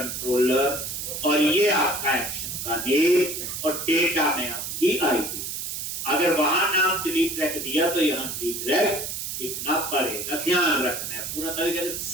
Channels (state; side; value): noise; right; hiss, 5 dB below the sound